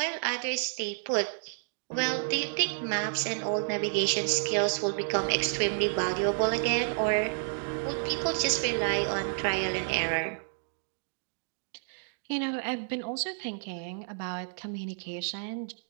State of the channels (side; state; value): left; silent; digital silence